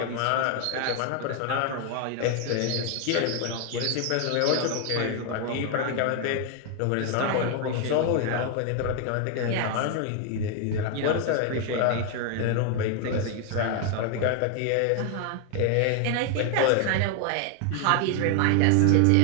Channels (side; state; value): both; different; correlation 0.00